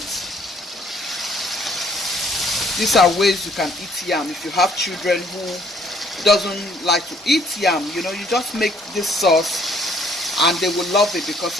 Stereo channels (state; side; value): normal; both; correlation 0.63